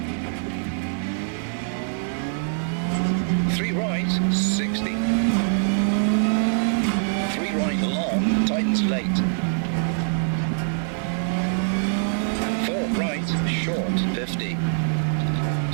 3 right, 60. 3 right, long, tightens late. 4 right, short, 50.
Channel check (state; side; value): silent; left; digital silence